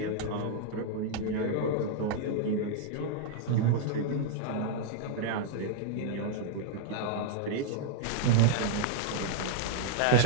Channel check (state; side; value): different; both; correlation -0.01